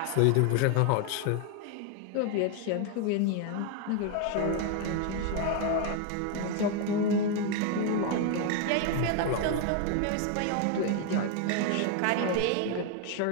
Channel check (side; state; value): both; different; correlation 0.01